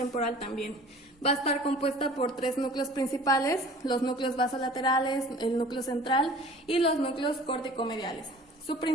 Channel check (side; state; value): both; normal; correlation 0.46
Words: también. Va a estar compuesta por 3 núcleos principales, los núcleos basolaterales, el núcleo central y los núcleos córtico-mediales. Su